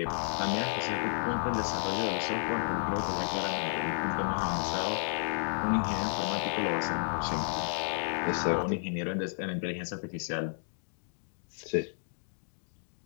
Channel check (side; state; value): right; silent; digital silence